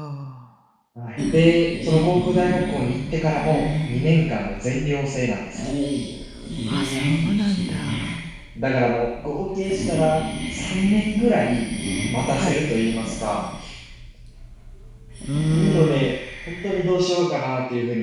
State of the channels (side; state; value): both; identical; correlation 1.00